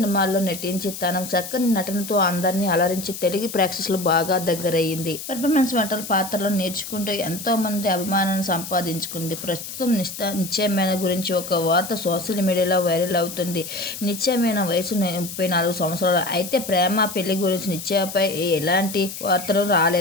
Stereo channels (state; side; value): noise; left; hiss, 9 dB below the sound